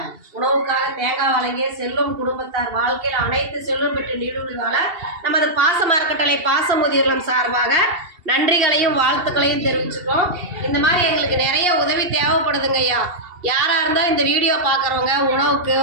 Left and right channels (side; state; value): left; late; 2.7 ms